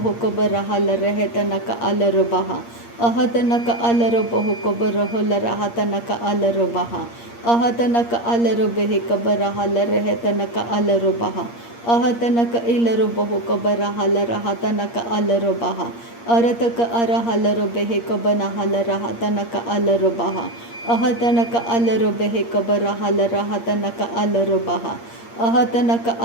कबर हाल रहे तनक अलरो बहा अहतनक अलरो बहो कबर होल रहा तनक अलरो बहा अहतनक अलरो बेहे कबर हाल रहे तनक अलरो बहा अहतनक इलरो बहो कबर हाल रहा तनक अलरो बहा अरतक अर हालरो बेहे कबर हाल रहा तनक अलरो बहा अहतनक अलरो बेहे कबर हाल रहा तनक अलरो बहा अहतनक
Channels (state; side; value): late; right; 8.6 ms